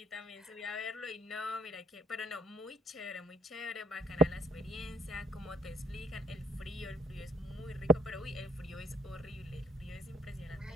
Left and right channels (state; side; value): normal; both; correlation 0.63